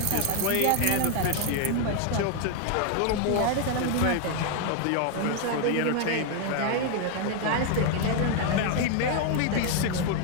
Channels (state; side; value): different; both; correlation 0.00